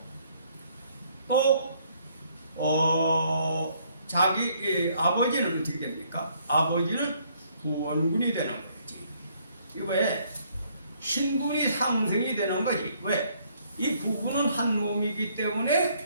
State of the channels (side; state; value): both; inverted; correlation -0.66